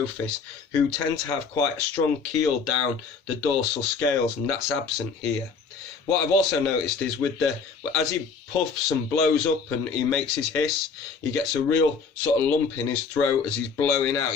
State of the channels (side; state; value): right; quieter; 5.2 dB